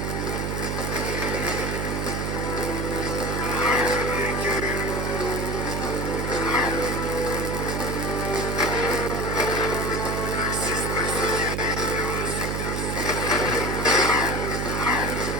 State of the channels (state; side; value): noise; right; hum, 1 dB below the sound